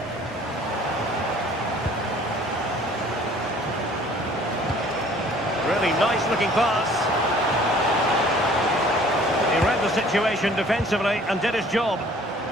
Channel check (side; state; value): both; normal; correlation 0.53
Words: Really nice looking pass. He read the situation defensively and did his job.